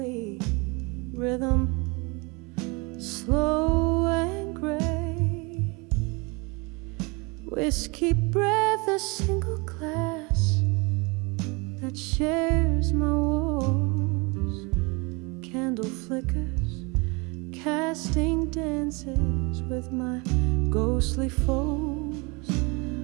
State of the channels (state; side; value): quieter; left; 28.6 dB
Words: rhythm, slow and gray. Whiskey breath, a single glass that shares my walls. Candle flickers, casting dances with my ghostly foes.